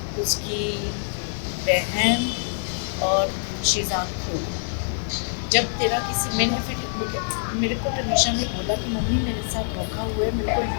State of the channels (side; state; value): right; silent; digital silence